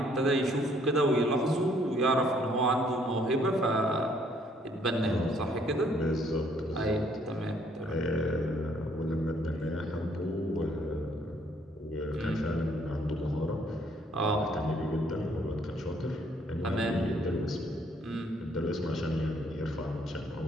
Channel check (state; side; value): normal; both; correlation 0.65